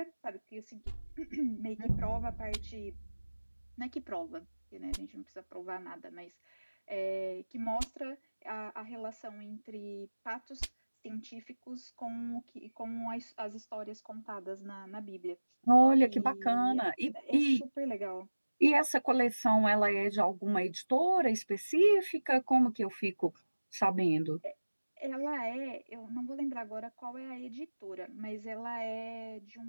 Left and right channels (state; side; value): inverted; both; correlation -1.00